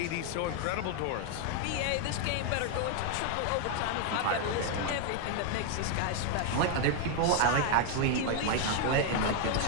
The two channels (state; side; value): different; both; correlation 0.00